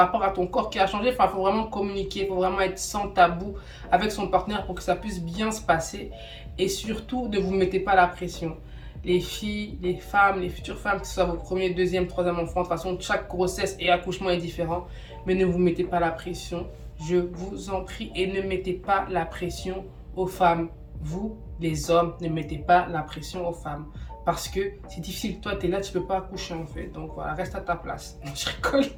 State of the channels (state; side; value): identical; both; correlation 1.00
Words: à ton corps qui a changé. Enfin, il faut vraiment communiquer, il faut vraiment être sans tabou avec son partenaire pour que ça puisse bien se passer. Et surtout, ne vous mettez pas la pression. Les filles, les femmes, les futures femmes, que ce soit votre premier, deuxième, troisième enfant, de toute façon, chaque grossesse et accouchement est différent. mais ne vous mettez pas la pression. Je vous en prie, et ne mettez pas la pression aux femmes. Vous, les hommes, ne mettez pas la pression aux femmes. Parce que c'est difficile. Toi, tu es là, tu peux pas accoucher en fait. Donc voilà, reste à ta place. Non, je rigole.